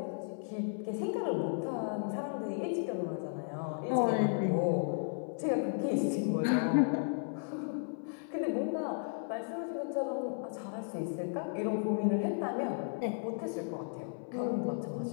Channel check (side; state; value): right; silent; 55 dB below the other